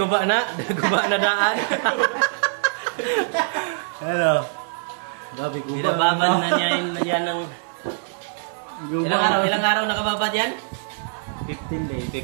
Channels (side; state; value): left; silent; 63 dB below the other